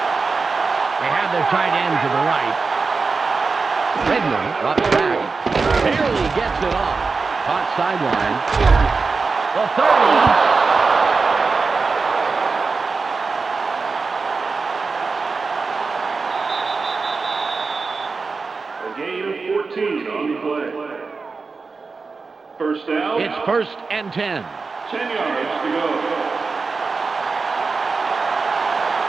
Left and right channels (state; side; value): quieter; left; 4.4 dB